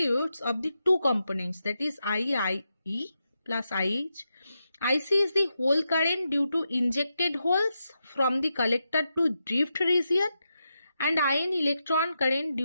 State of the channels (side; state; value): both; inverted; correlation -0.87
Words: of the two components, that is IE plus IH. IC is the hole current due to injected holes from the collector to drift region, and IN electron current